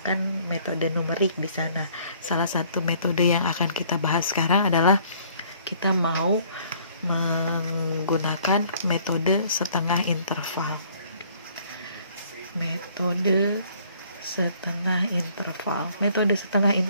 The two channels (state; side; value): inverted; both; correlation -0.59